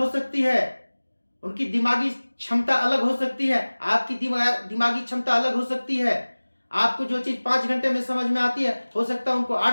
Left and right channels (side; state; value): both; inverted; correlation -1.00